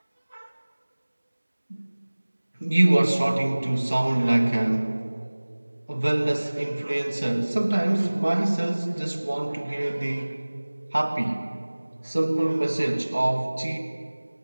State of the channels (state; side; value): inverted; both; correlation -1.00